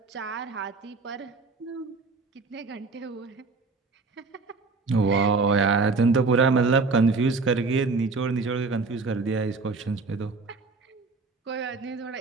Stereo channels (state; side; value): quieter; left; 4.1 dB